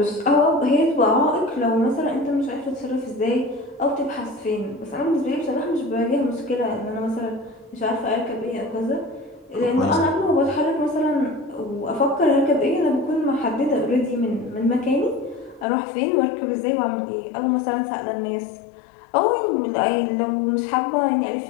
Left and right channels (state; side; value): drops out; right; at 15.7 s